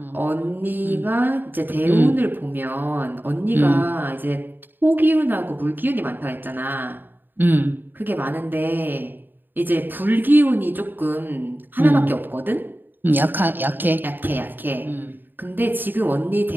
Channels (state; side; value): late; left; 0.093 ms